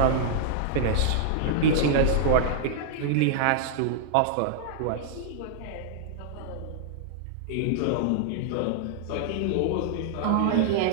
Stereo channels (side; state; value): both; different; correlation -0.01